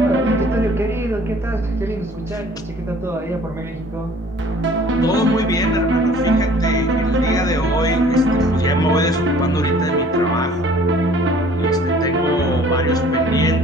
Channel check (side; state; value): both; normal; correlation 0.52